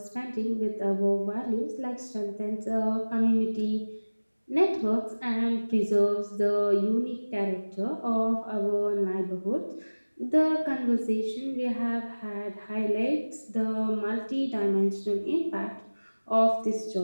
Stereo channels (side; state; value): both; inverted; correlation -1.00